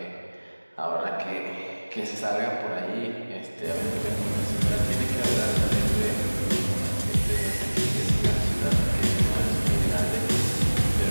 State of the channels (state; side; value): inverted; both; correlation -1.00